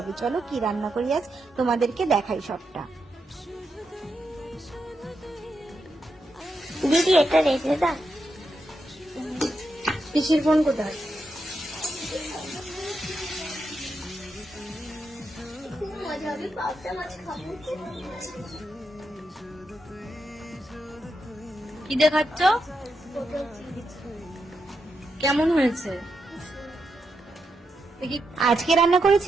চলো কি রান্না করি আজ তোমাদেরকে দেখাই সবটা। দিদি এটা রেখে দাও। পিসির ফোন কোথায়? খুব মজা হবে, পাবদা মাছ খাবো। কি দেখাচ্ছ? কেমন হয়েছে? আজকে রান্না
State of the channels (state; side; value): normal; both; correlation 0.85